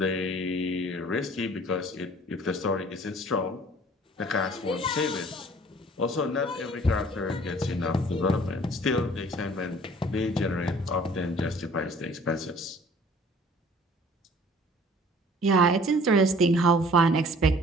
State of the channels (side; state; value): both; normal; correlation 0.52